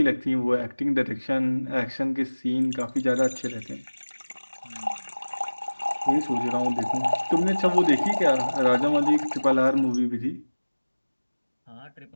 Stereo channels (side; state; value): both; inverted; correlation -1.00